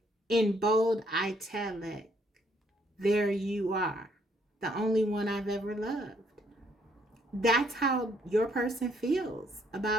in bold italic, there you are, the only one I've ever loved. That's how your person feels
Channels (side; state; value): both; normal; correlation 0.69